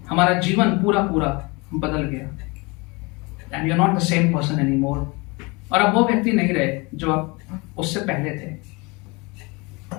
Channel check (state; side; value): quieter; right; 27.0 dB